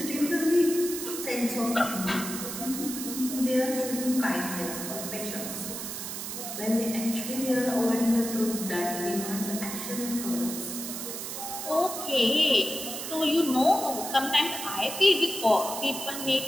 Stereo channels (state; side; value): noise; right; hiss, 6 dB below the sound